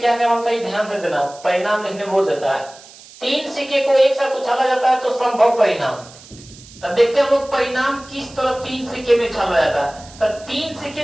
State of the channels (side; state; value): right; noise; hiss, 21 dB below the sound